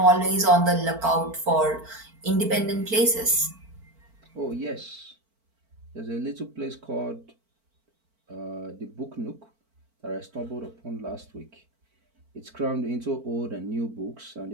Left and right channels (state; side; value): late; left; 4.5 ms